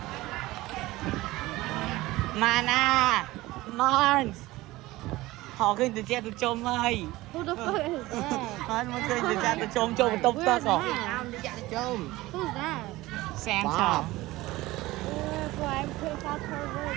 Mana Mons họ khơi từ che từ chôm ơi Who the fuck is that? nó mới khơi từ che từ chôm chôm tốc tốc rồi Nam đi chạy chung Who's that? xem Bob. cho Boy, I'm pretty fast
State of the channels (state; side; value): quieter; left; 18.7 dB